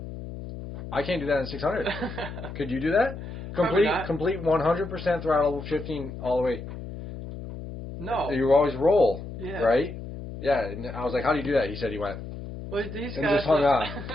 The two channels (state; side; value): noise; left; hum, 10 dB below the sound